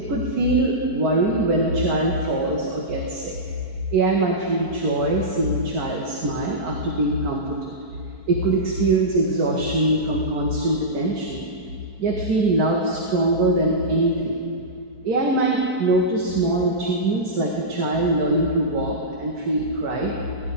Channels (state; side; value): late; left; 4.5 ms